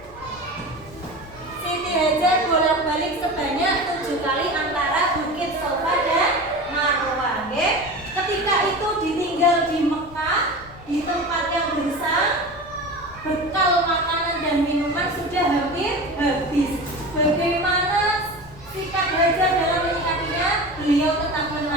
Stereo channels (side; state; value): left; noise; rumble, 20 dB below the sound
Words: Siti Hajar bolak-balik sebanyak 7 kali antara Bukit Safa dan Marwah ya. Ketika itu ditinggal di Mekah, di tempat yang gersang,